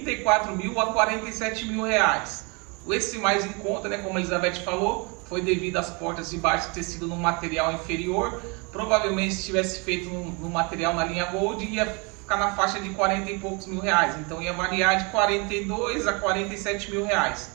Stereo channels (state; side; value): quieter; left; 30.6 dB